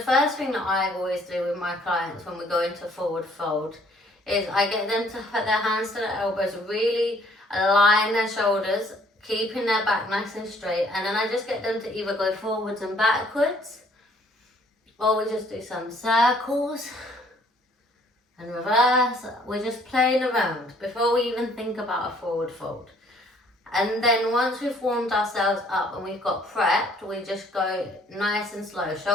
first thing that I always do with my clients when we go into forward fold is I get them to put their hands to their elbows, really align their shoulders, keeping their back nice and straight, and then I just get them to either go forwards and backwards, or we just do some circles and reverse. We're just playing around before we even think about a forward fold. And then once we've warmed ourselves up and we've got prepped, we just go nice and slow,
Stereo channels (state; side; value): normal; both; correlation 0.61